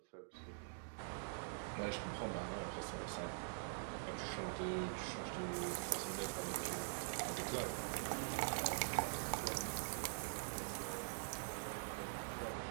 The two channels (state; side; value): silent; left; digital silence